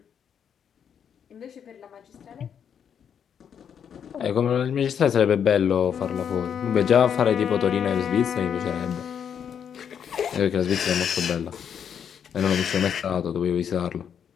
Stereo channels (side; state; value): right; quieter; 8.0 dB